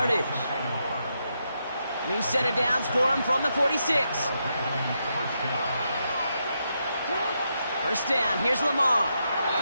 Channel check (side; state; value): both; inverted; correlation -0.82